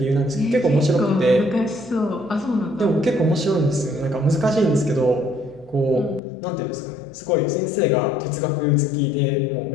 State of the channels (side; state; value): right; drops out; at 6.2 s